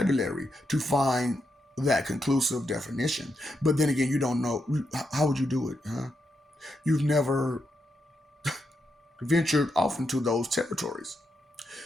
to find that conclusive definition. But then again, you don't know. How would you do it, huh? You've never ventured off into those territories.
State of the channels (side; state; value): both; normal; correlation 0.83